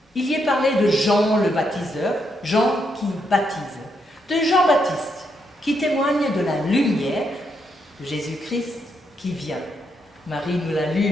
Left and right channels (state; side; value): normal; both; correlation 0.79